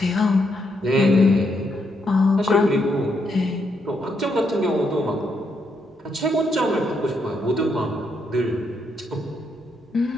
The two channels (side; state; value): both; normal; correlation 0.78